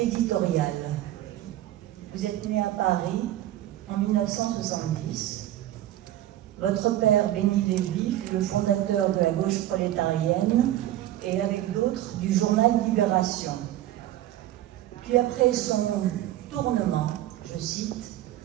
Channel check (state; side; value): quieter; left; 13.6 dB